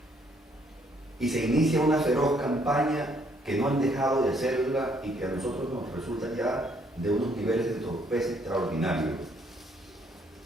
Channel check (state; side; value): normal; both; correlation 0.68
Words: Y se inicia una feroz campaña que no han dejado de hacerla y que a nosotros nos resulta ya de unos niveles de torpeza extraordinarios.